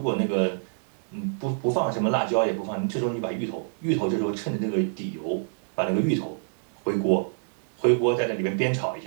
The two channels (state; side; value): silent; left; digital silence